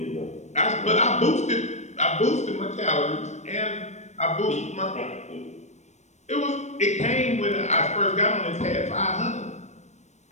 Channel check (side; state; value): right; late; 0.34 ms